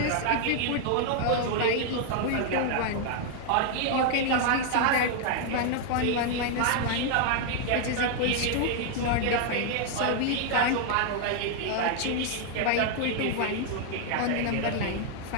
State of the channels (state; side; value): different; both; correlation 0.00